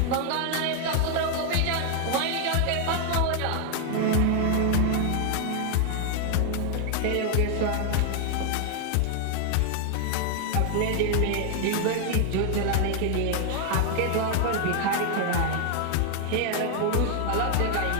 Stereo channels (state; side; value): different; both; correlation 0.00